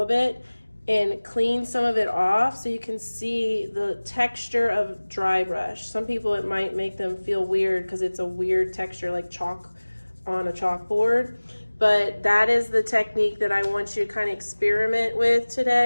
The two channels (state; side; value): inverted; both; correlation -1.00